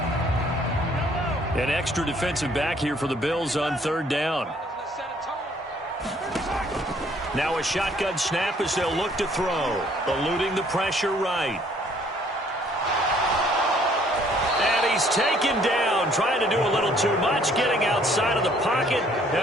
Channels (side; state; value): both; normal; correlation 0.61